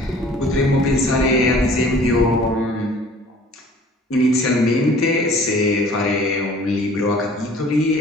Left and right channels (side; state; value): both; normal; correlation 0.50